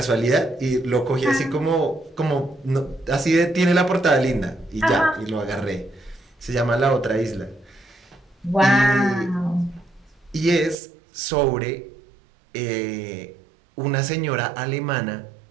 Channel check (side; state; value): left; drops out; at 10.8 s